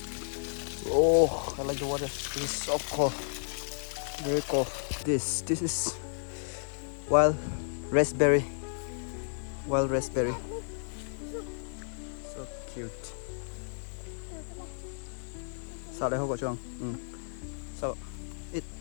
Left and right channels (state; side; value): silent; right; digital silence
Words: Oh, I like the water. This is so cold, very cold. This is wild raspberry, so cute. Sao đây không có chuông? Sao? It.